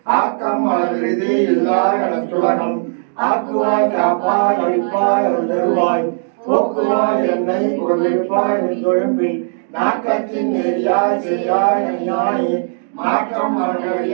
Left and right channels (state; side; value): silent; left; digital silence